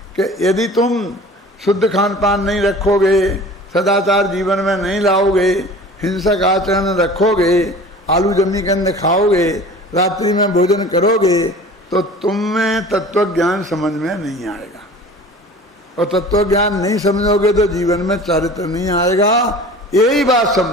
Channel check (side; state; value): both; normal; correlation 0.42